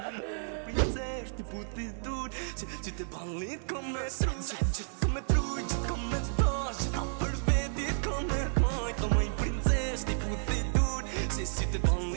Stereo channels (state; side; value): silent; left; digital silence